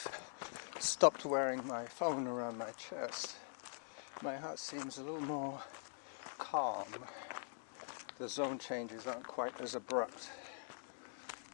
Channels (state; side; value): silent; right; digital silence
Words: stopped wearing my phone around my chest, my heart seems a little more calm. The zone changes aren't quite as abrupt.